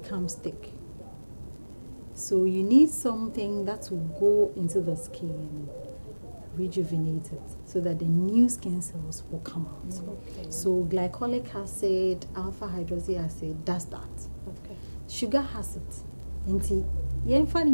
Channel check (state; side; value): inverted; both; correlation -1.00